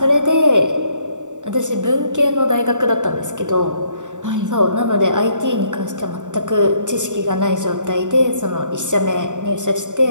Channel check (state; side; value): late; left; 0.86 ms